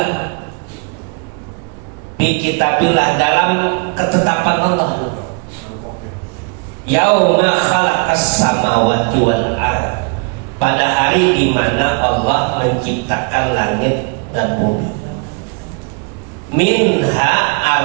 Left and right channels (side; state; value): left; quieter; 34.2 dB